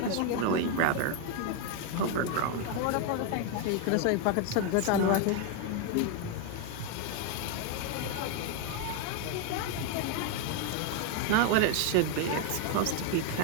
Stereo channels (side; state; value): both; different; correlation 0.01